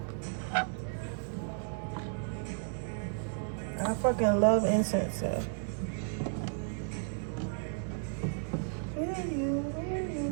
I fucking love incense, so.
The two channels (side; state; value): left; silent; 55 dB below the other